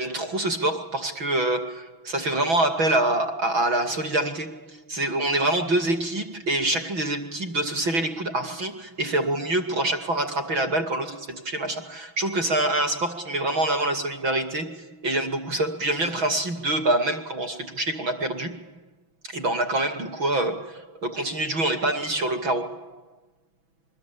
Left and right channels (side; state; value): left; late; 6.1 ms